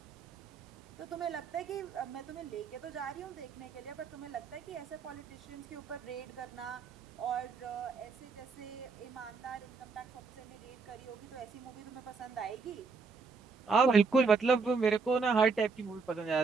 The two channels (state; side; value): quieter; left; 4.8 dB